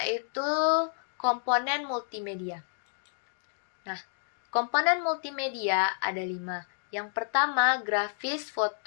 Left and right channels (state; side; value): silent; right; digital silence